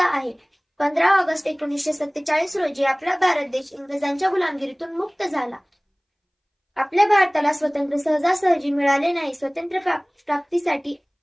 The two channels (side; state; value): both; identical; correlation 1.00